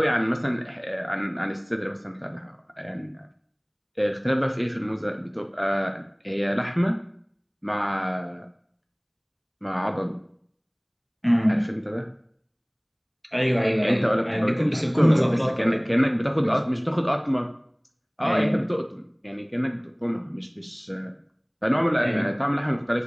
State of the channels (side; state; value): both; identical; correlation 1.00